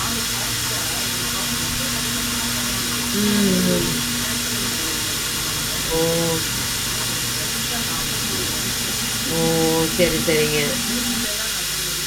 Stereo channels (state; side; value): identical; both; correlation 1.00